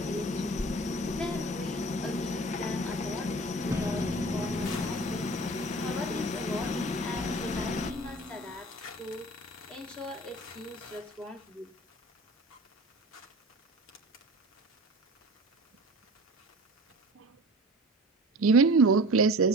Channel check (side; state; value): both; normal; correlation 0.39